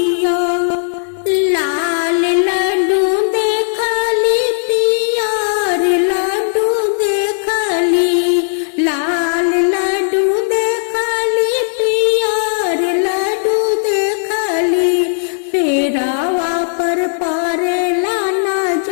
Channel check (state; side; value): silent; right; digital silence